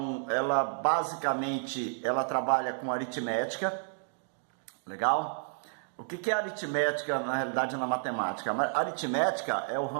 ela basicamente trabalha com aritmética, legal? O que é aritmética na realidade na matemática? A aritmética é o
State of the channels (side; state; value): left; silent; digital silence